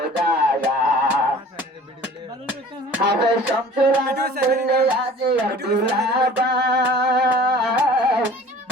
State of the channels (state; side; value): normal; both; correlation 0.46